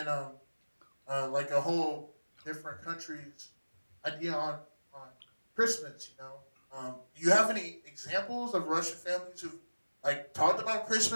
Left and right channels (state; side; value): inverted; both; correlation -1.00